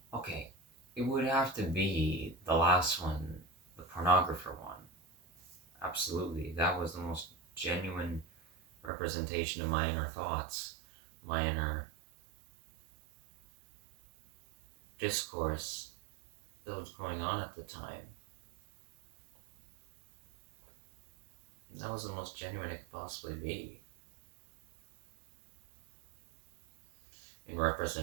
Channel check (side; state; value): left; drops out; at 8.9 s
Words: Okay, it would have to be the last one, the pornographer one. Absolutely, that was the most genuine representation of my inner thoughts, my inner discourse that was going on at the time. That was the most genuine it could possibly be. In